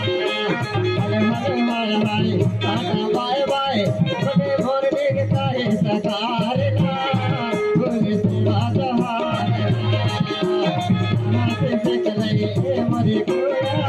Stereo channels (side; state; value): both; identical; correlation 1.00